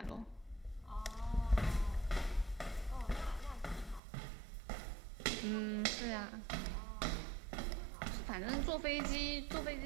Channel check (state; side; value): drops out; left; at 4.0 s